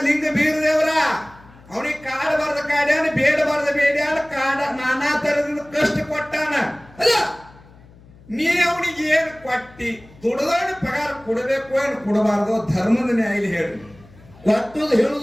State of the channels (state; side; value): noise; left; hum, 24 dB below the sound